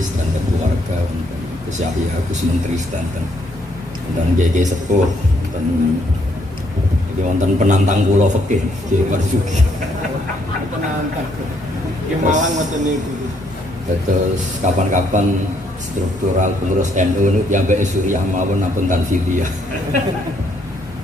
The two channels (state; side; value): normal; both; correlation 0.71